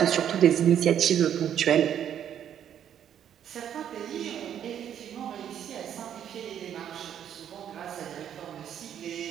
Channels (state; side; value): quieter; left; 9.6 dB